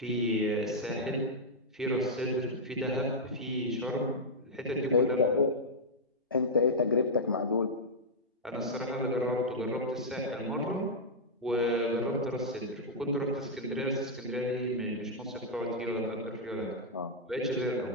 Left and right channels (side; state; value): both; normal; correlation -0.06